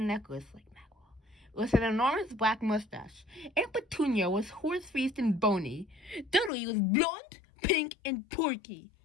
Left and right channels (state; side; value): drops out; right; at 6.5 s